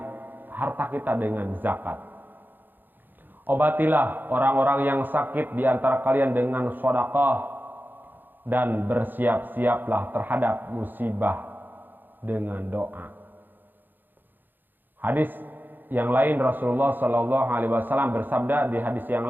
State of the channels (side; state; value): left; late; 0.090 ms